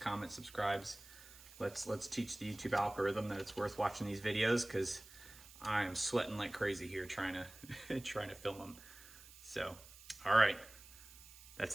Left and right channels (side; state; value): right; noise; hiss, 19 dB below the sound